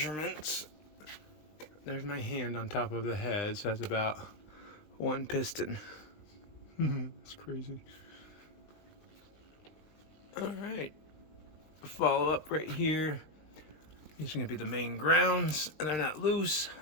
There's my hand on top of the head, so that's about 1 piston. That's crazy. All right, follow up right here. These are gonna be the main grounds, and they're not loose.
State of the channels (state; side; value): late; right; 19 ms